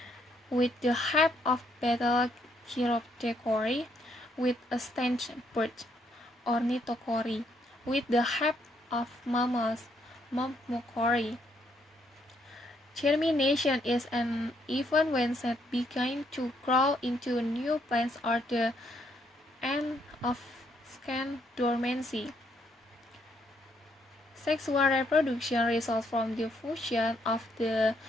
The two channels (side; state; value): both; normal; correlation 0.72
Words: with the help of betel chiroptechory, with a stench bird ornithochory, with the help of mammals myrmecochory. Germination is an event when seeds begin to grow into new plants or the end of Second, dormancy. Sexual reproduction results from the fusion of the